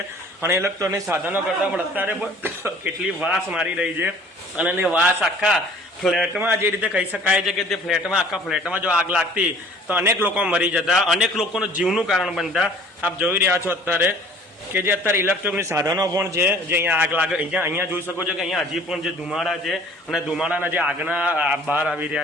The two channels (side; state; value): both; normal; correlation 0.51